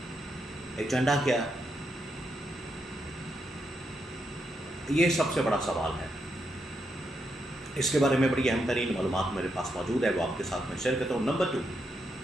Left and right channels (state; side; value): normal; both; correlation 0.81